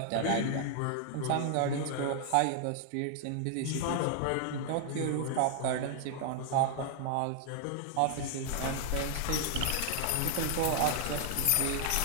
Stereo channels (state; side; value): different; both; correlation 0.00